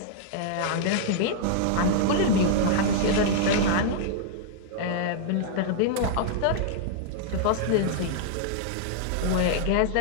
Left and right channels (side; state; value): both; different; correlation -0.01